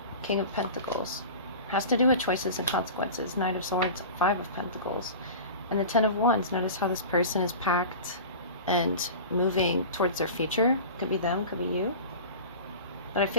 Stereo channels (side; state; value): both; inverted; correlation -0.34